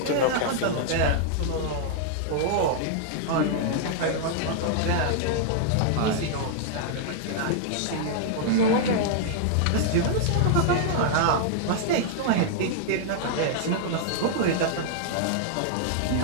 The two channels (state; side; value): different; both; correlation -0.01